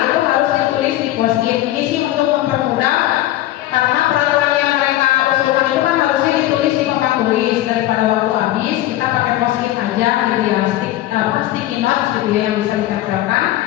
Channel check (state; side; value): quieter; right; 14.9 dB